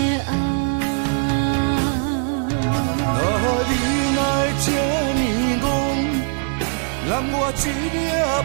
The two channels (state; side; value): silent; left; 56 dB below the other